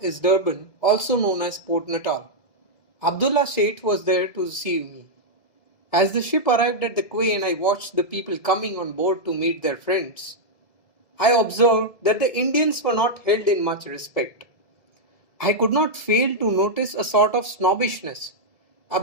Durban, also known as Port Natal. Abdullah Sheikh was there to receive me. As the ship arrived at the quay and I watched the people coming on board to meet their friends, I observed that the Indians were not held in much respect. I could not fail to notice a sort of snobbishness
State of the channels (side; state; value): right; late; 2.2 ms